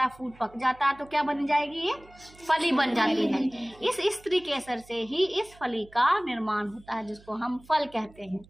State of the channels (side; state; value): right; noise; hum, 25 dB below the sound